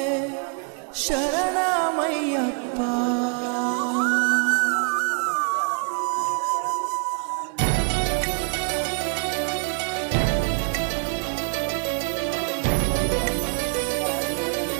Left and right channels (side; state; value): left; quieter; 39.6 dB